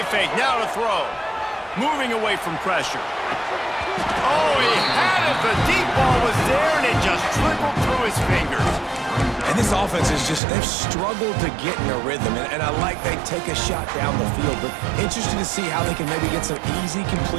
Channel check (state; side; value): drops out; left; at 10.4 s